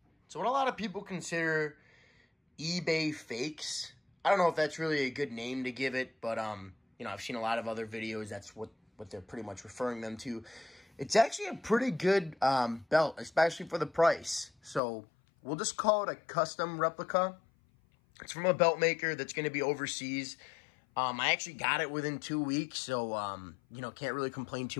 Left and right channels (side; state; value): right; drops out; at 14.8 s